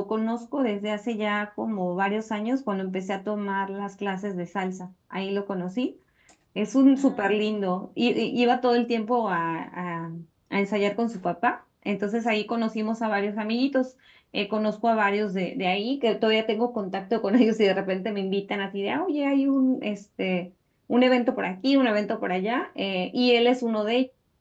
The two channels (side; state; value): both; identical; correlation 1.00